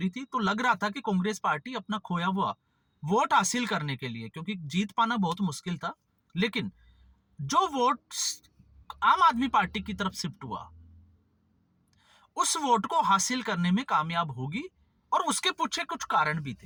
थी, तो लग रहा था कि कांग्रेस पार्टी अपना खोया हुआ वोट हासिल करने के लिए, क्योंकि जीत पाना बहुत मुश्किल था, लेकिन जो वोट आम आदमी पार्टी की तरफ शिफ्ट हुआ, उस वोट को हासिल करने में कामयाब होगी। और उसके पीछे कुछ कारण भी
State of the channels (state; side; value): identical; both; correlation 1.00